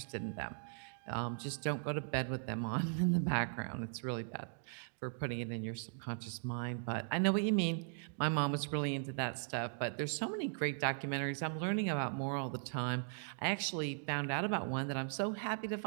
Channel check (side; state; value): left; silent; digital silence